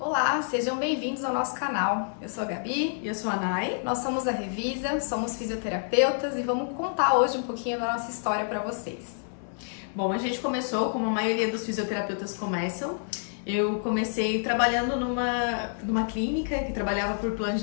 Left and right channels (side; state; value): right; silent; digital silence